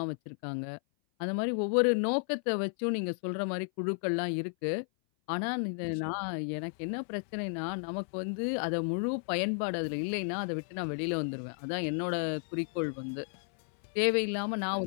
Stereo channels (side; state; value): right; silent; 56 dB below the other